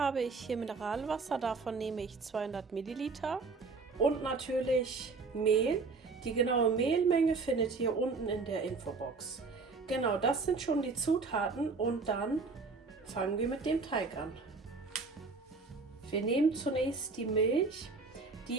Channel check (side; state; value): left; quieter; 4.3 dB